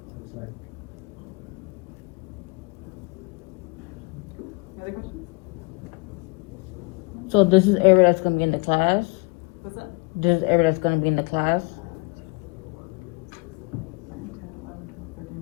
Looks like. Any other questions? So this is area that's gonna be in the class? What's that? This is area that's gonna be in the class?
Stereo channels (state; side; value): quieter; right; 28.3 dB